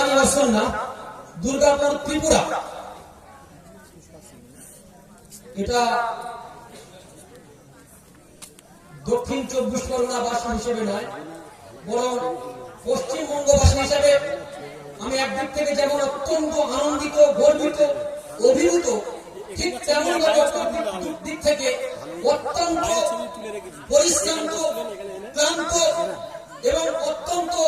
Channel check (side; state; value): both; identical; correlation 1.00